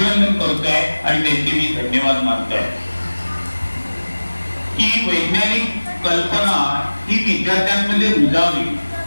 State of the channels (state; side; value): inverted; both; correlation -1.00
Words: करतोय आणि त्यांचे मी धन्यवाद मानतोय. की वैज्ञानिक कल्पना ही विद्यार्थ्यांमध्ये रुजावी,